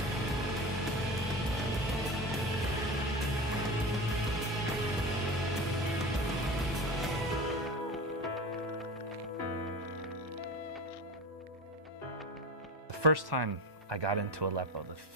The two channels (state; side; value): normal; both; correlation 0.29